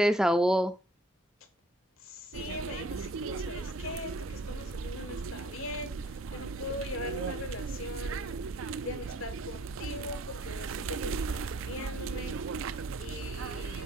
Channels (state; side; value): normal; both; correlation 0.57